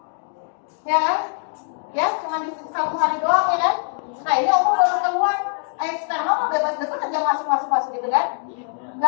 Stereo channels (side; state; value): right; silent; 64 dB below the other